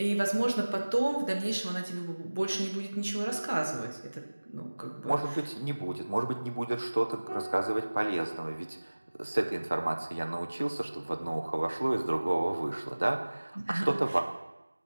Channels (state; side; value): inverted; both; correlation -1.00